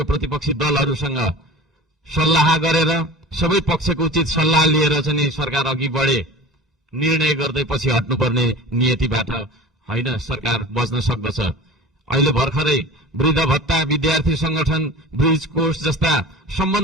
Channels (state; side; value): normal; both; correlation 0.37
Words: प्रतिपक्षी दलहरूसँग सल्लाह गरेर सबै पक्षको उचित सल्लाह लिएर चाहिँ सरकार अघि बढे। निर्णय गर्दै पछि हट्नुपर्ने नियतिबाट होइन सरकार बच्न सक्दछ। अहिले भर्खरै वृद्ध भत्ता विद्यार्थी संगठन ब्रिज कोर्स जस्ता